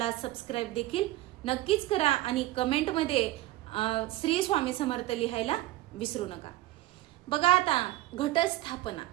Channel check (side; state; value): left; quieter; 16.7 dB